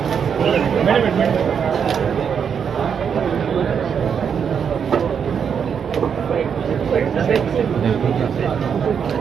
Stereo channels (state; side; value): quieter; left; 7.2 dB